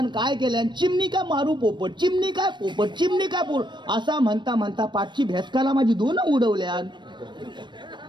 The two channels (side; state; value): left; late; 0.22 ms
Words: काय केल्या चिमणी काय मारू पोपट चिमणी काय पोपट चिमणी काय पोपट असा म्हणता म्हणता पाठची भेसकाला माझी 2 उडवल्या.